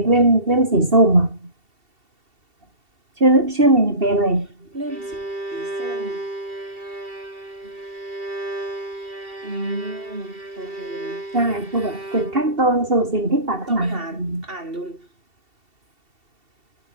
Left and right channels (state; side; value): late; left; 2.7 ms